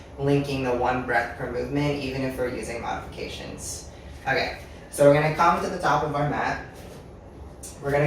linking the one breath per movement, even if we're using modifications. Okay, so we're going to come to the top of our mat. We're going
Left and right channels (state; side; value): identical; both; correlation 1.00